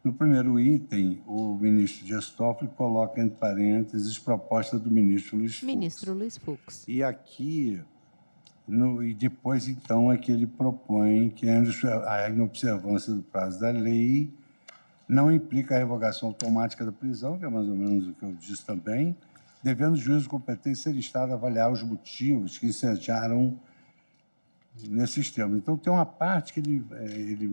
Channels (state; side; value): inverted; both; correlation -1.00